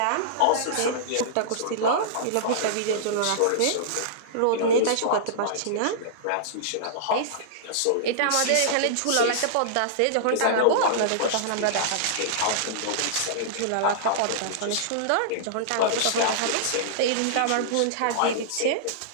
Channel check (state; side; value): different; both; correlation -0.02